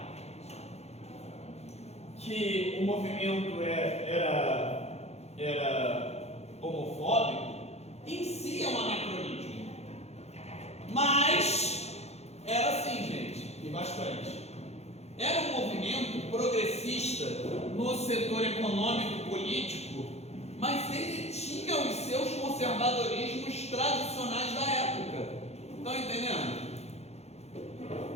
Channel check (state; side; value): late; right; 0.31 ms